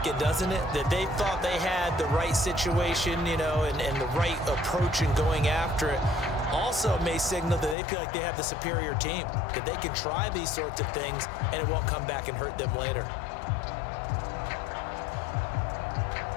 it, doesn't it? That they thought they had the right situation, you know, and the right approach in going after it. Also may signal that they feel like they have the superior team, that they can try these sorts of things and it won't come back and hurt them later.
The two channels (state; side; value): drops out; right; at 7.8 s